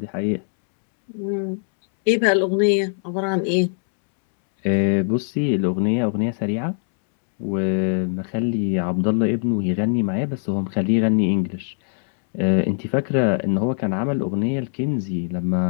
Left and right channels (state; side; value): silent; right; 64 dB below the other